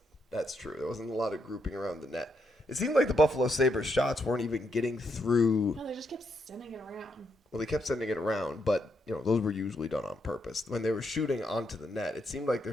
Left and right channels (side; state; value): both; normal; correlation 0.79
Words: That's true. There wasn't a lot of grouping around the net. It seemed like the Buffalo Sabres shots weren't even getting through. No, they just kept sending it around. Well, they kept sending it around, but those were usually done on purpose. When they were shooting onto the net, it seemed like their